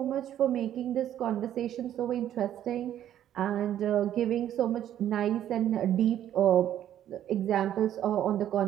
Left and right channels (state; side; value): quieter; left; 11.2 dB